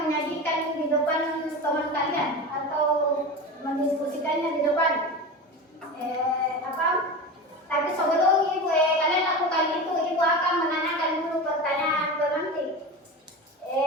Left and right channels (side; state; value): both; normal; correlation 0.27